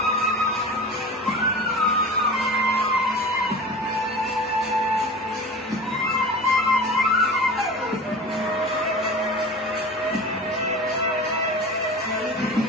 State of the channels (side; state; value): both; normal; correlation 0.35